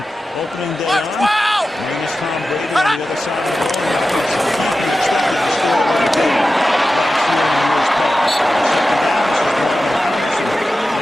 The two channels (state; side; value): normal; both; correlation 0.93